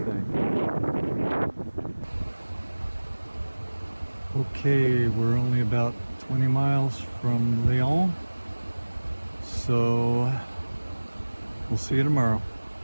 Okay, we're only about 20 miles from Lyon, so we'll see you tomorrow.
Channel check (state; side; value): inverted; both; correlation -1.00